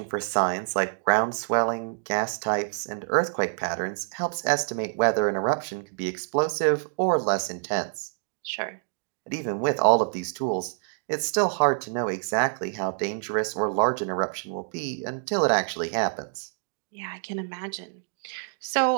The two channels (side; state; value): left; silent; digital silence